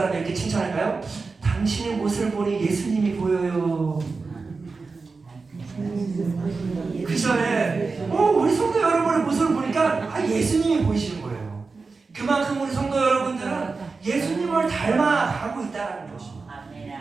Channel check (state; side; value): quieter; left; 4.3 dB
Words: 이렇게 칭찬할까요? 당신의 모습을 보니 예수님이 보여요. 그죠? 우리 성도 여러분의 모습을 보니까 예수님이 보이시는 거예요. 그만큼 우리 성도 여러분들은 예수님을 닮아가고 있다는 것입니다. 아멘.